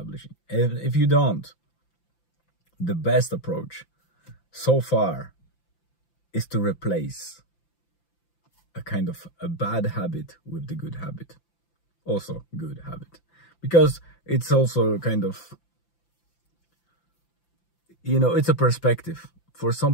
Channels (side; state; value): right; late; 5.8 ms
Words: And if you don't, the best approach so far is to replace a kind of a bad habit with the good habit. Also good habit. Because it's also kind of, it's a perspective. For